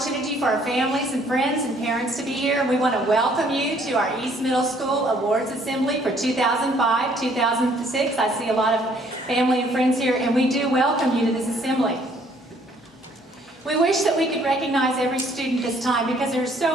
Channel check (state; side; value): normal; both; correlation 0.62